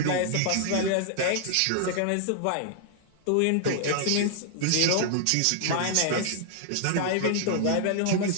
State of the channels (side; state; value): both; different; correlation 0.00